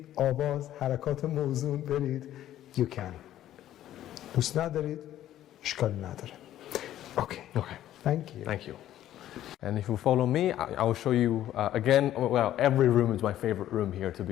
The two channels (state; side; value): quieter; right; 12.6 dB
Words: آواز، حرکات موزون برید، you can. دوست ندارید، اشکال نداره. Okay. Thank you. And if you follow me, I will show you again. Well, every room is my favorite room here, to